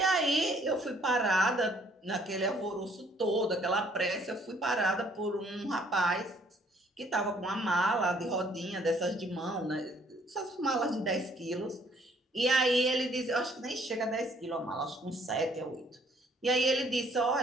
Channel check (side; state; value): both; normal; correlation 0.63